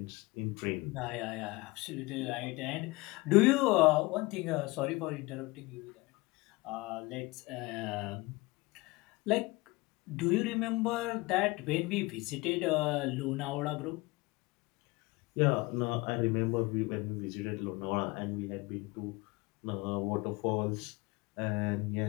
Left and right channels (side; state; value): right; quieter; 23.1 dB